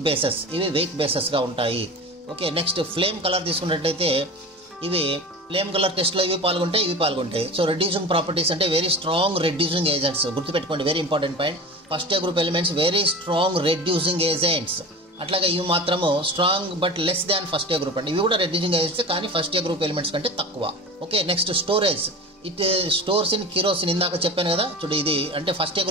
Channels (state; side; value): normal; both; correlation 0.33